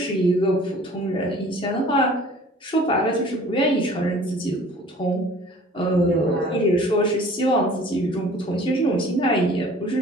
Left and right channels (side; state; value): both; normal; correlation 0.49